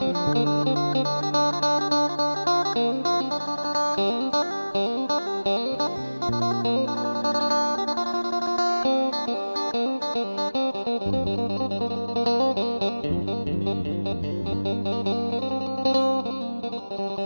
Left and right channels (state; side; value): inverted; both; correlation -1.00